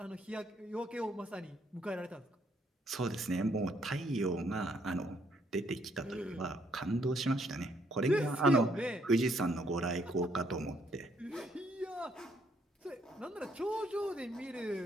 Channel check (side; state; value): both; normal; correlation 0.70